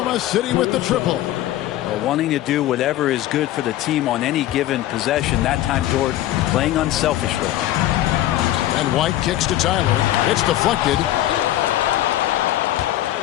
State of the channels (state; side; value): quieter; right; 14.1 dB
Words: City with the triple. Wanting to do whatever is good for the team on any given possession. That time, Dort playing unselfishly. And White kicks to Tyler. It's deflected.